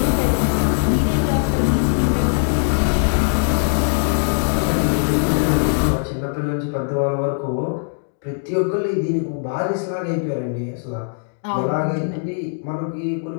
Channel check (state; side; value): silent; right; digital silence